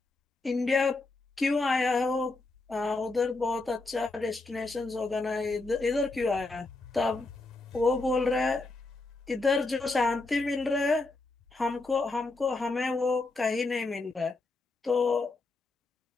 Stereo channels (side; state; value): right; quieter; 3.3 dB